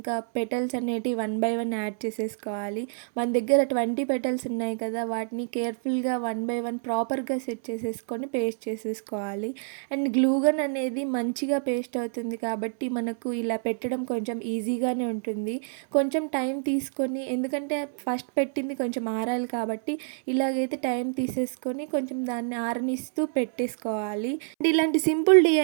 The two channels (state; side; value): silent; left; 60 dB below the other